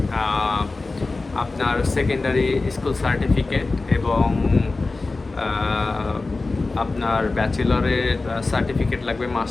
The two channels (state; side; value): quieter; right; 3.5 dB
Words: আপনার সেকেন্ডারি স্কুল সার্টিফিকেট এবং আপনার ব্যাচেলরের সার্টিফিকেট লাগবে